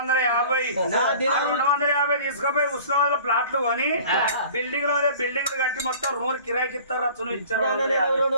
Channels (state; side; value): inverted; both; correlation -0.45